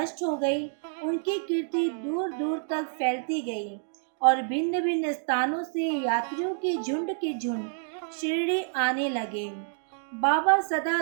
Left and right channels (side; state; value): left; silent; digital silence